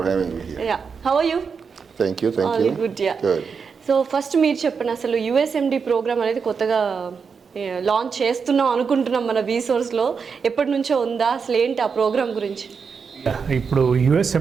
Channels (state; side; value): quieter; left; 5.8 dB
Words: having me here. Yeah, how are you? Thank you. All good, yeah. Good. So first మీరు చెప్పండి, అసలు USMD ప్రోగ్రామ్ అనేది కొత్తగా లాంచ్ చేస్తున్నాం అనుకుంటున్నాం మన రీసోర్స్లో. ఎప్పటి నుంచో ఉందా, అసలు ఏంటి ఆ ప్రోగ్రామ్ గురించి? ఇప్పుడు